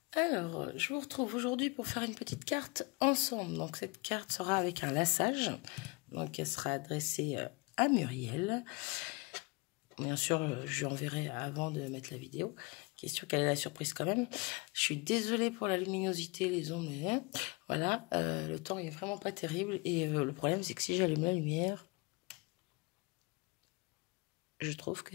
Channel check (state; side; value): quieter; right; 27.0 dB